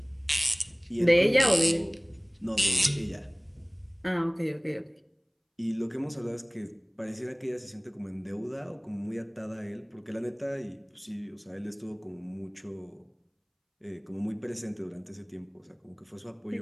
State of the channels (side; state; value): both; identical; correlation 1.00